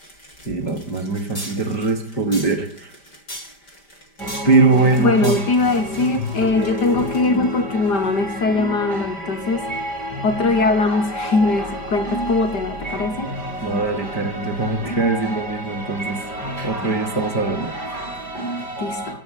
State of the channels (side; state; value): right; late; 5.1 ms